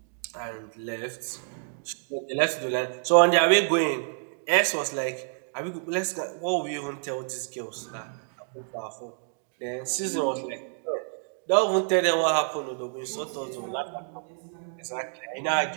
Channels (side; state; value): left; silent; 59 dB below the other